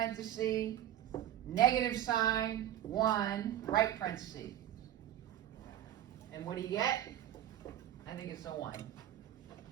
negative sign, 1, right parenthesis. And what do you get? I think it's a 1.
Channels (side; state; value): left; quieter; 11.8 dB